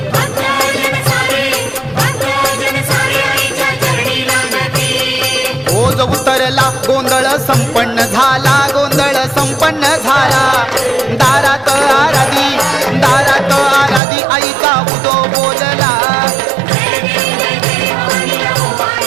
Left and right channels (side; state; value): left; drops out; at 14.0 s